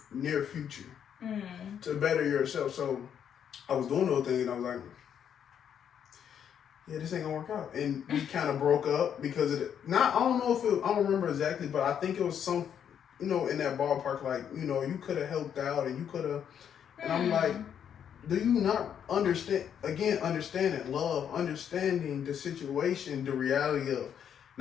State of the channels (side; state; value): right; quieter; 8.6 dB